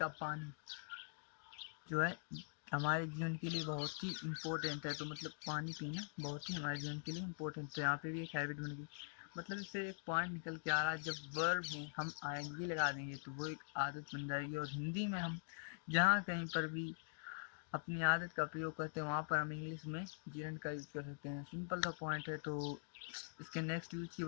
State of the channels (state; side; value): silent; right; digital silence